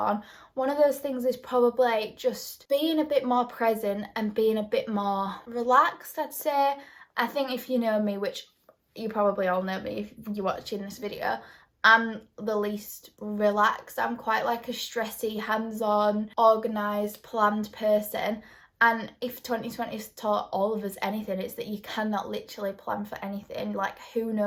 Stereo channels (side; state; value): both; identical; correlation 1.00